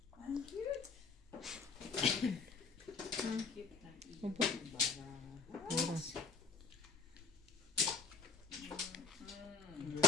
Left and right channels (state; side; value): quieter; right; 4.9 dB